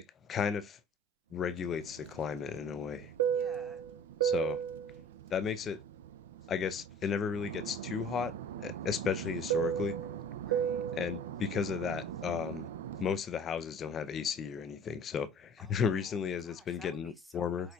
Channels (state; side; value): normal; both; correlation 0.46